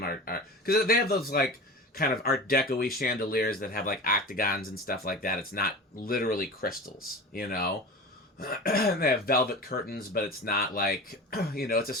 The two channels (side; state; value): both; normal; correlation 0.33